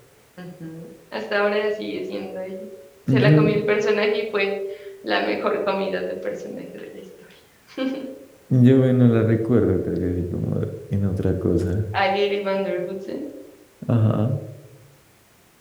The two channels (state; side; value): identical; both; correlation 1.00